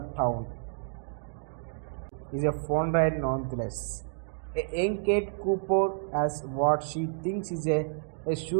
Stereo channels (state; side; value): silent; left; digital silence